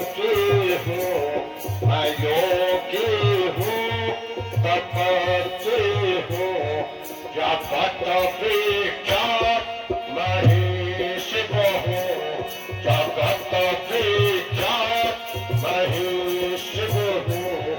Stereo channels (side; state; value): both; identical; correlation 1.00